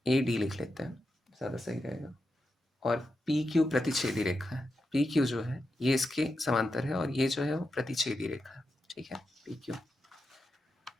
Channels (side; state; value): both; normal; correlation 0.87